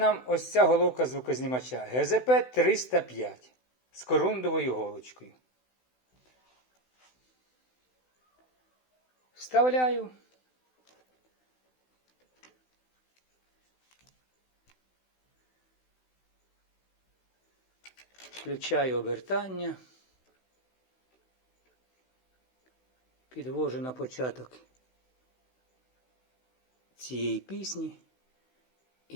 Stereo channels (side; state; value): right; late; 16 ms